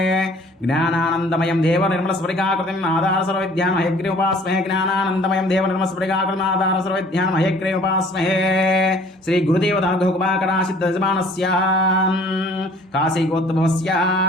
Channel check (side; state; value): both; normal; correlation 0.54